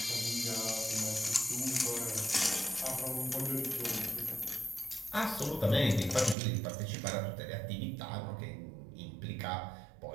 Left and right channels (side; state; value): left; drops out; at 6.4 s